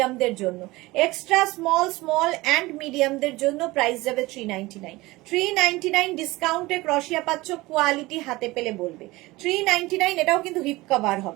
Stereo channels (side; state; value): left; quieter; 20.4 dB